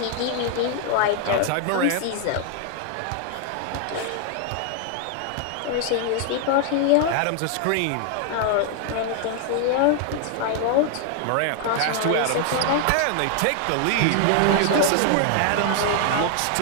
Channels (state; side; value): different; both; correlation 0.00